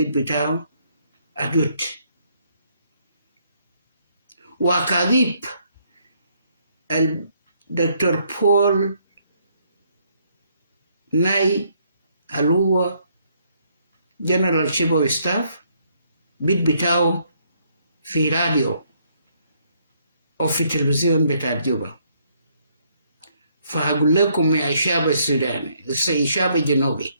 بتاعه أدوت. وأكاذيب الدكتور بول ناي اللي هو جنرال شيبو ستاف بيت بتاعه في راديو أو في تلفزيون بتاع جوبا. فأقول لكم يا شعب السوداني، الشعب الجنوبي،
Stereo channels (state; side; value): inverted; both; correlation -0.69